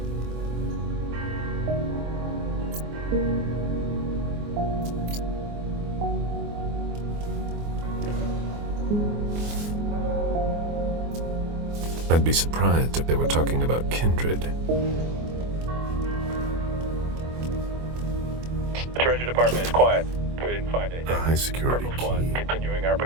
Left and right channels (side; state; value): left; late; 24 ms